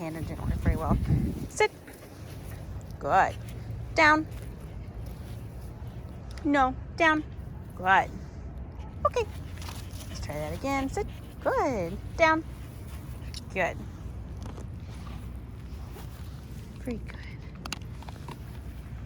and didn't work very well. Sit. Good. Down. No, down. Good. Okay. Let's try that again. Sit. Good. Down. Good. Pretty good.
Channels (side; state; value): both; identical; correlation 1.00